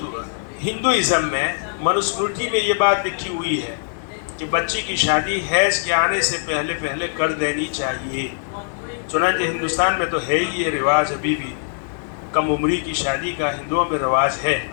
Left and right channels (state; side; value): silent; right; digital silence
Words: ہندوازم میں منوسمرتی میں یہ بات لکھی ہوئی ہے کہ بچی کی شادی حیض کے آنے سے پہلے کر دینی چاہیے۔ چنانچہ ہندوستان میں تو ہے ہی یہ رواج، ابھی بھی کم عمری کی شادی کا ہندوؤں میں رواج ہے،